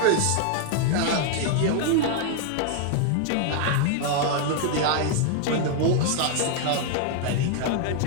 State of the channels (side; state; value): both; different; correlation 0.00